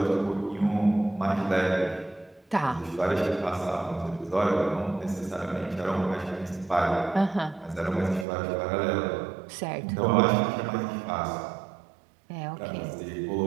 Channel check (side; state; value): left; drops out; at 8.2 s